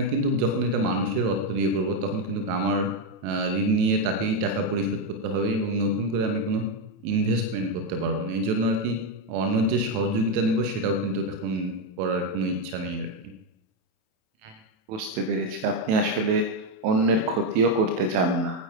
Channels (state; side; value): late; left; 28 ms